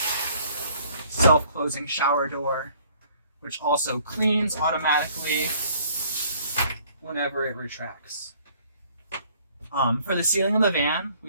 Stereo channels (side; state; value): both; inverted; correlation -0.58